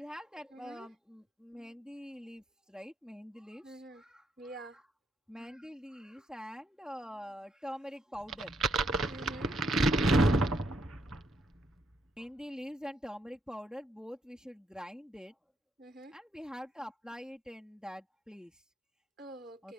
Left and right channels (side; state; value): both; normal; correlation 0.76